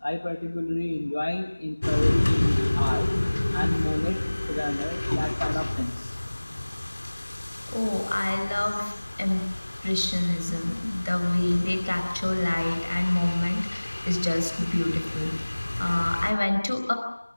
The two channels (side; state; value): both; inverted; correlation -1.00